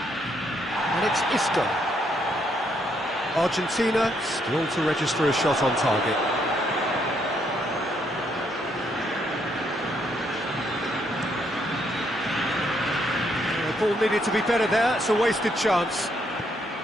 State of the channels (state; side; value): normal; both; correlation 0.73